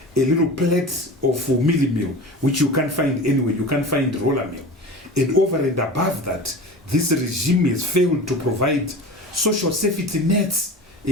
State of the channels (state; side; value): normal; both; correlation 0.34